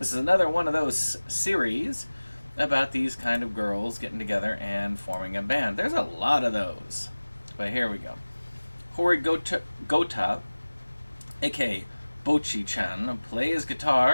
is another one of those series about these kind of girls getting together and forming a band. There's a lot of those. But here we go. Hori Gota, aka Bochi-chan, plays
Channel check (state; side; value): inverted; both; correlation -1.00